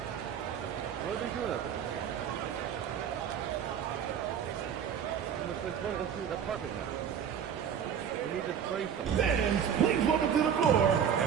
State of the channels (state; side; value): quieter; left; 8.2 dB